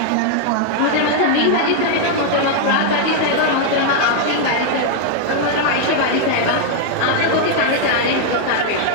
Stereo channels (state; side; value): different; both; correlation 0.00